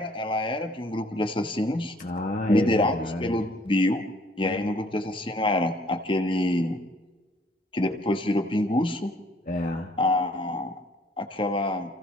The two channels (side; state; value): both; normal; correlation 0.60